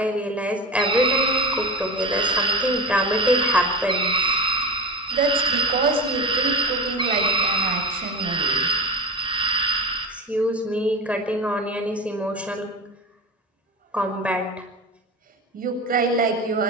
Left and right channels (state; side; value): normal; both; correlation 0.25